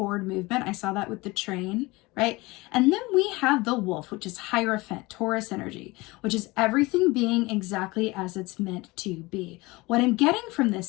movement. I saw that with the train, right? And then we have the wolf, which is Hierophant, Taurus energy, which is everything being exactly as it's meant to be. What I'm getting from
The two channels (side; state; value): right; quieter; 22.6 dB